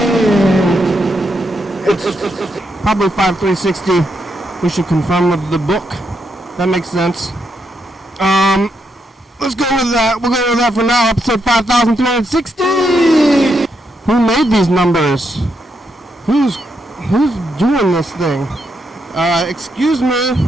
It's probably 5,360. We should confirm with the book. That makes sense. Let's go with that. We'll go with that for now. Episode 5,360. Who made these numbers? Who's doing this thing? Excuse me,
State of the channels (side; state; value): both; normal; correlation 0.80